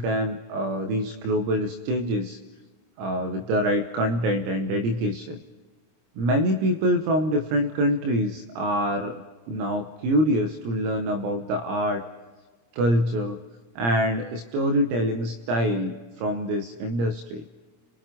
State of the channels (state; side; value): late; left; 26 ms